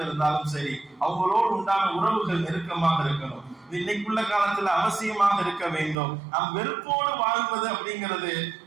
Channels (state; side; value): drops out; left; at 6.0 s